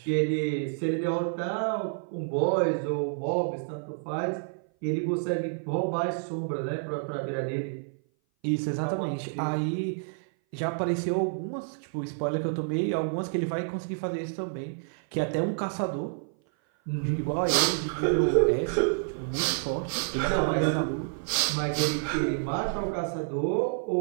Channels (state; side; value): silent; left; 57 dB below the other